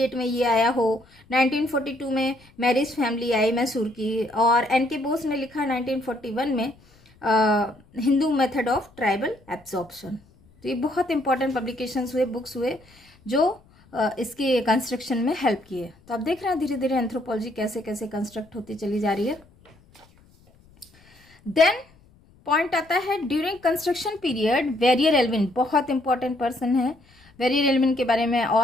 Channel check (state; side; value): noise; left; rumble, 29 dB below the sound